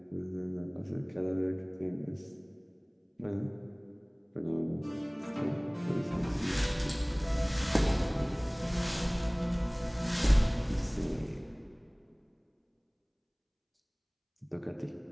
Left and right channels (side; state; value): both; identical; correlation 1.00